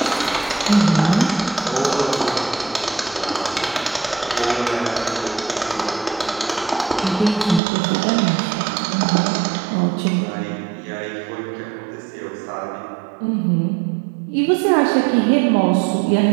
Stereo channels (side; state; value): left; drops out; at 7.6 s